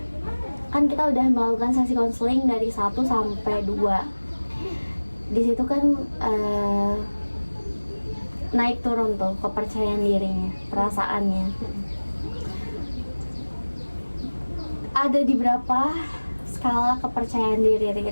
Kan kita udah melakukan sesi konseling dari 1 sampai 2. Di situ kan naik turun tuh kepercayaan dirinya, perasaannya. Ada di berapa skala kepercayaan diri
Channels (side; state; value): both; inverted; correlation -1.00